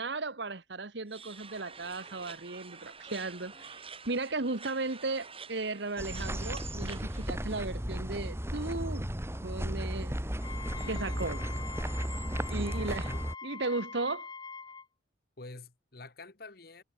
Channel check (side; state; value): both; normal; correlation 0.32